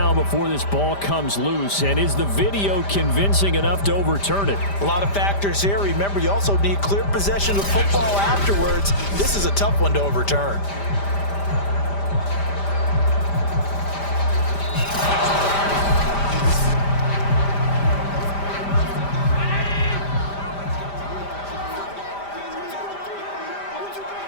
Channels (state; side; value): late; right; 5.0 ms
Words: before this ball comes loose? And is the video convincing enough to overturn it? A lot of factors here. Remember, you also need clear possession of football afterwards. This is a tough one to overturn.